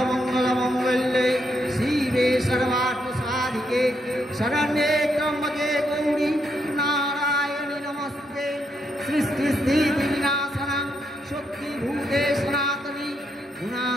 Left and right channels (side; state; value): both; normal; correlation 0.78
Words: शिवे सर्वार्थसाधिके शरण्ये त्र्यम्बके गौरी नारायणि नमस्ते सृष्टिस्थितिविनाशनं शक्तिभूते सनातनी